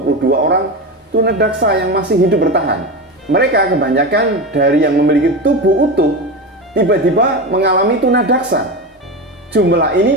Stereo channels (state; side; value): normal; both; correlation 0.21